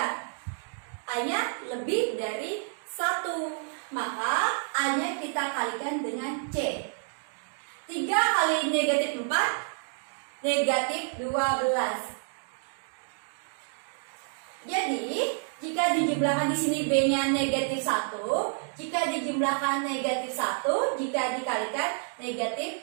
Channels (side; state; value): left; silent; 58 dB below the other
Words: A-nya lebih dari 1. Maka A-nya kita kalikan dengan C. 3 kali negatif 4, negatif 12. Jadi jika dijumlahkan di sini B-nya negatif 1, jika dijumlahkan negatif 1, jika dikalikan negatif